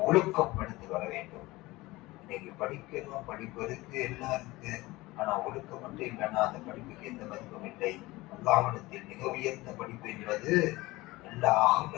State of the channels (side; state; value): right; quieter; 20.2 dB